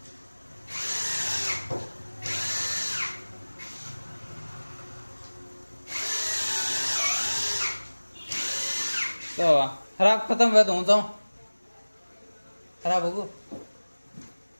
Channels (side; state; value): both; inverted; correlation -1.00